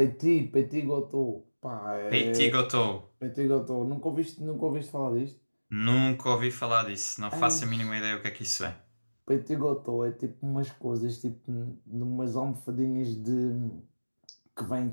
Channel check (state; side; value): inverted; both; correlation -1.00